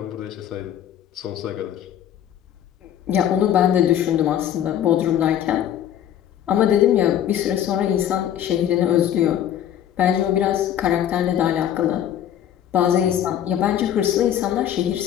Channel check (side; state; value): right; quieter; 10.5 dB